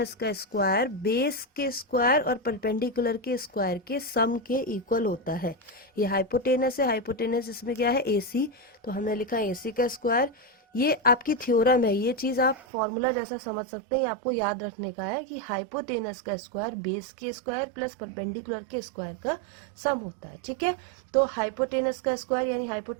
का स्क्वायर बेस के स्क्वायर और परपेंडिकुलर के स्क्वायर के सम के इक्वल होता है. ये हाइपोटेनस है. हाइपोटेनस इसमें क्या है? AC. तो हमने लिखा AC का स्क्वायर. ये आपकी थ्योरम है. ये चीज़ आप फॉर्मूला जैसा समझ सकते हैं. ये आपको याद रखने का है कि हाइपोटेनस का स्क्वायर बेस के स्क्वायर प्लस परपेंडिकुलर के स्क्वायर का सम होता है. ठीक है, तो हाइपोटेनस का स्क्वायर यानी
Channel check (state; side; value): drops out; left; at 12.6 s